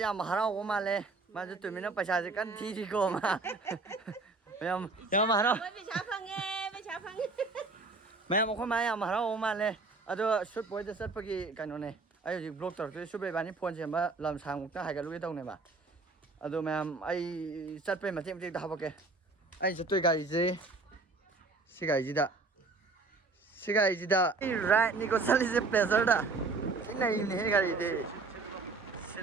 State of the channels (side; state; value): left; quieter; 3.8 dB